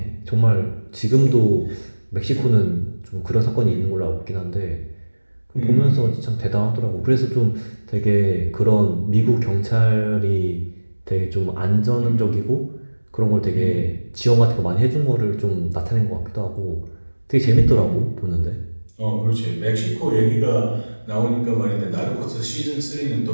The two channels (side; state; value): both; inverted; correlation -1.00